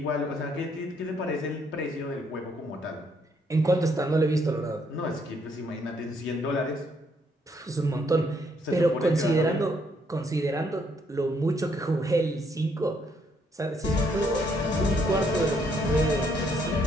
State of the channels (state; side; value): normal; both; correlation 0.71